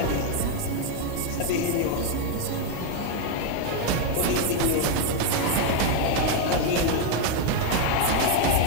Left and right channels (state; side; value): different; both; correlation 0.01